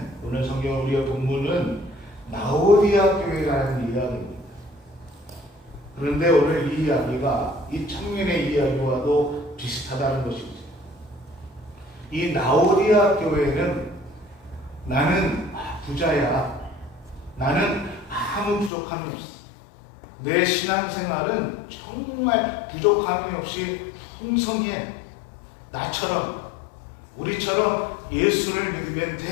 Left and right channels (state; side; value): drops out; right; at 18.7 s